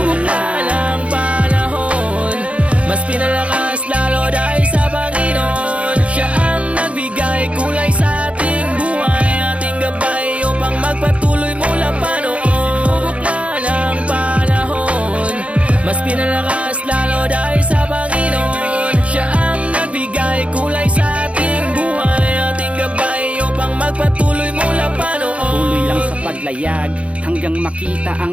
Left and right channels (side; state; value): left; late; 0.063 ms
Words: na ng panahon, mas pinalakas lalo dahil sa Panginoon. Siya ang nagbigay kulay sa ating buhay, ating gabay upang magpatuloy mula pa noon. Sinubok na ng panahon, mas pinalakas lalo dahil sa Panginoon. Siya ang nagbigay kulay sa ating buhay, ating gabay upang magpatuloy mula pa noon. Tuloy lang sa paglayag hanggang makita